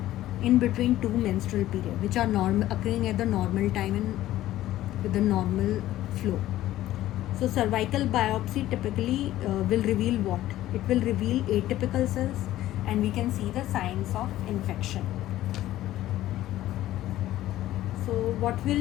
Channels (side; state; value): right; quieter; 14.4 dB